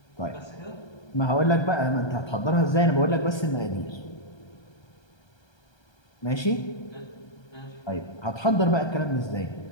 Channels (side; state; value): right; late; 1.3 ms